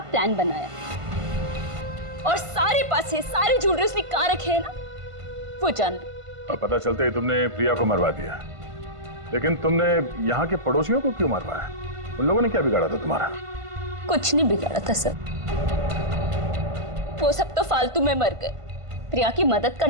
प्लान बनाया, और सारे पैसे, सारे ज्वेलरी उसने कहाँ रखे हैं ना, वो जान लो। और पता चलते ही तुमने प्रिया को मरवा दिया। लेकिन तुमने यहाँ के पड़ोसियों को क्यों मरवाया? उन लोगों ने क्या बिगाड़ा था तुम्हारा? कुछ नहीं बिगाड़ा था सर, वो सब तो फालतू में मर गए। प्रिया की मदद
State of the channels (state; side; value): late; left; 1.5 ms